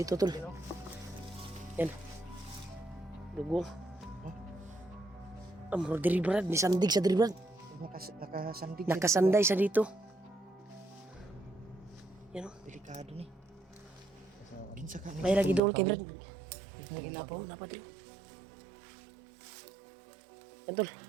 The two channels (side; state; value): left; drops out; at 15.6 s